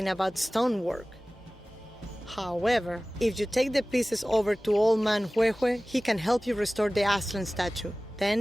about stonework. However, if you take the pieces over to Old Man Huehue, he can help you restore the Aslan statue.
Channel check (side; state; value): both; normal; correlation 0.98